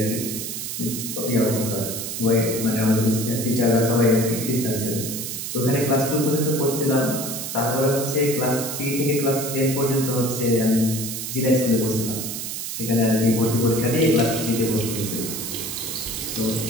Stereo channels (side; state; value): right; noise; hiss, 5 dB below the sound